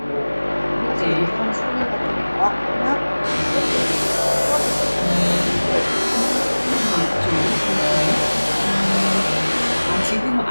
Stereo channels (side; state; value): both; inverted; correlation -1.00